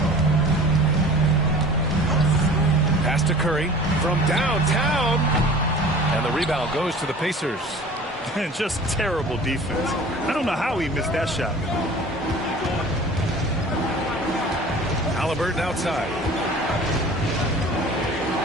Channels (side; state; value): both; normal; correlation 0.43